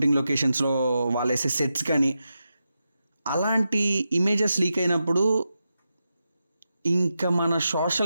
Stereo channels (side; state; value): both; inverted; correlation -0.89